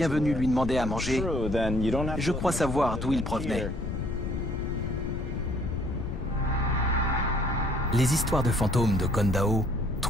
venus lui demander à manger, je crois savoir d'où ils provenaient. Les histoires de fantômes de Kondao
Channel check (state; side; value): noise; left; rumble, 4 dB below the sound